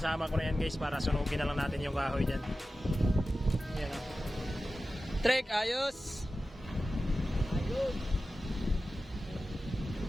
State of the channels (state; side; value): normal; both; correlation 0.94